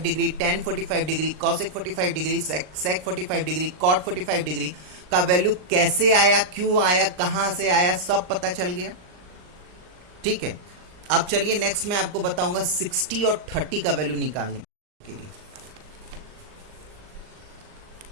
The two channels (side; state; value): left; late; 39 ms